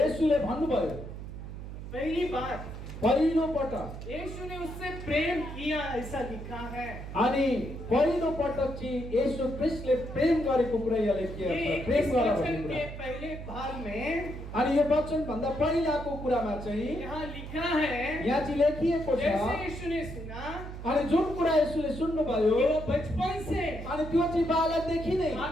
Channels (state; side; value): noise; right; hum, 10 dB below the sound